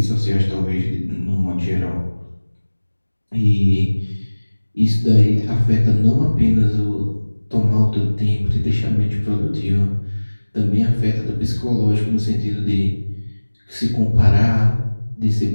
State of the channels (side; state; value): both; inverted; correlation -1.00